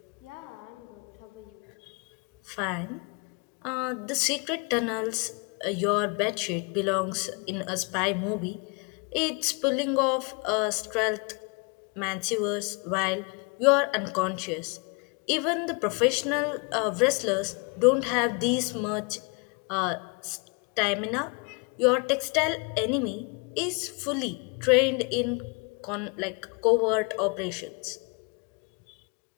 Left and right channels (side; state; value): right; quieter; 32.7 dB